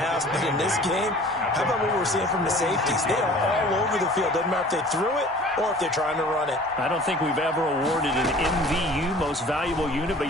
But in this game, how about what we're seeing from the safeties? They are all over the field. Doesn't matter if they threw it or if they're trying to run it. I don't think we've ever awarded an MVU, most valuable unit, but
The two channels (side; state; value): both; normal; correlation 0.46